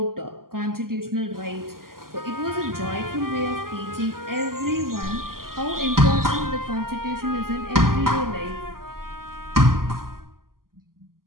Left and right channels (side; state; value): left; late; 0.92 ms